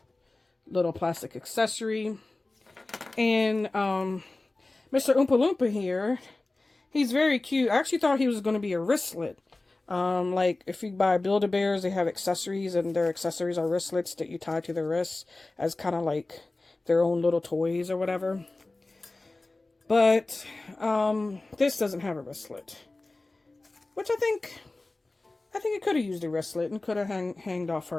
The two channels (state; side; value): quieter; right; 3.1 dB